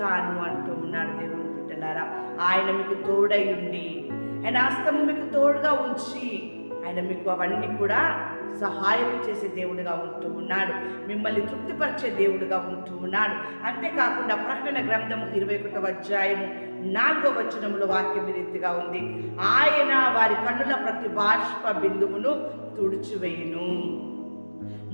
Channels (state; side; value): inverted; both; correlation -1.00